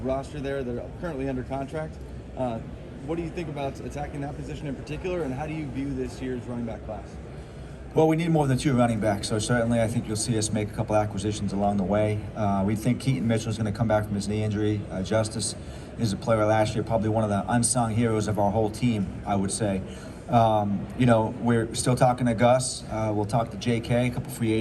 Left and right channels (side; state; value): both; identical; correlation 1.00